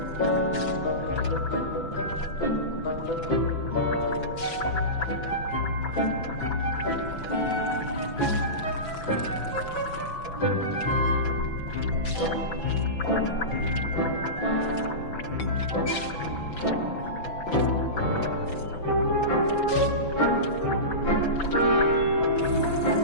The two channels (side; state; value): right; late; 6.0 ms